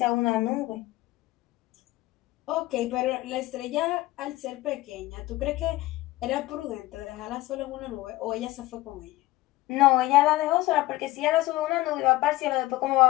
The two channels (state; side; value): quieter; right; 17.7 dB